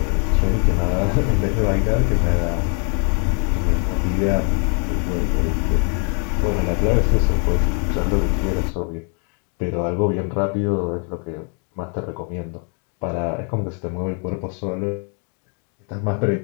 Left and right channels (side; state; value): right; quieter; 39.6 dB